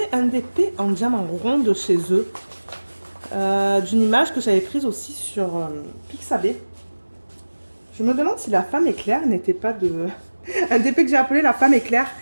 un DP en diamant rond de chez eux. D'une image que j'avais prise aussi sur Pixabay. Je me demande si la femme éclair n'était pas de... un DP que j'ai appelé la femme éclair,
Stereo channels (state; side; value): inverted; both; correlation -1.00